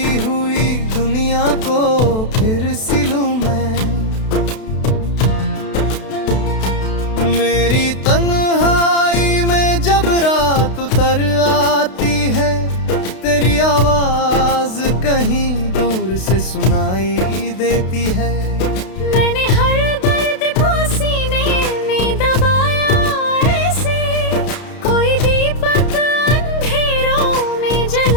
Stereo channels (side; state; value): right; late; 32 ms